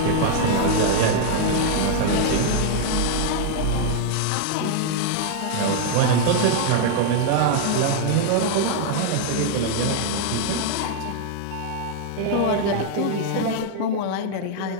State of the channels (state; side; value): different; both; correlation 0.00